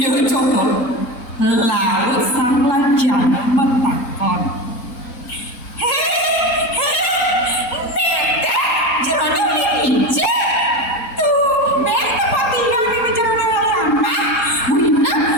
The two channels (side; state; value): right; late; 3.8 ms